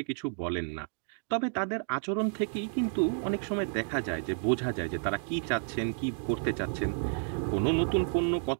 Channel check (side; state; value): left; silent; 57 dB below the other